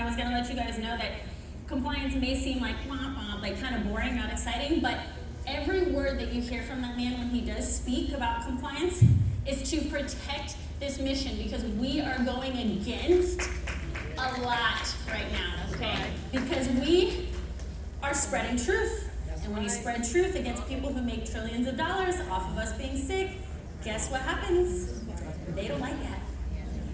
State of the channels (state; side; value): identical; both; correlation 1.00